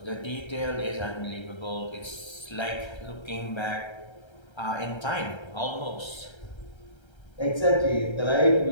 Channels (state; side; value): late; right; 1.3 ms